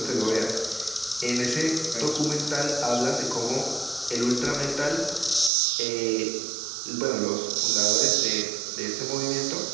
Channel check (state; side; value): drops out; left; at 5.5 s